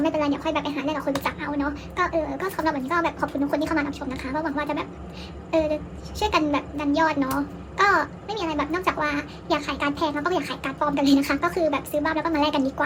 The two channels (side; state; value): both; identical; correlation 1.00